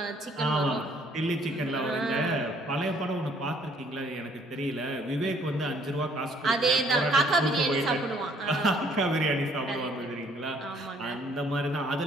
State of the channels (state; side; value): normal; both; correlation 0.62